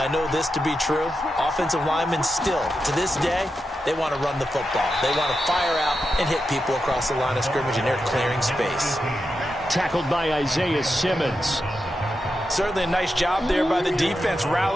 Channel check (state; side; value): normal; both; correlation 0.88